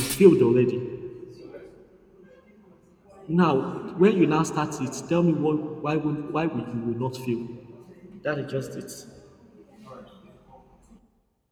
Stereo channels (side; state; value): both; identical; correlation 1.00